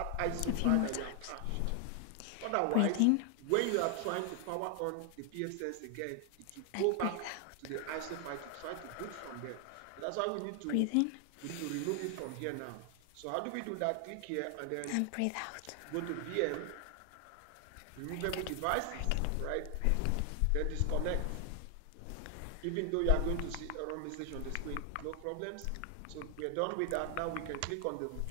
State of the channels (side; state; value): both; different; correlation 0.00